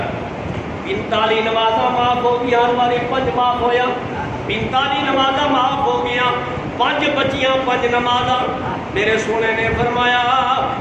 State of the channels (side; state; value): both; identical; correlation 1.00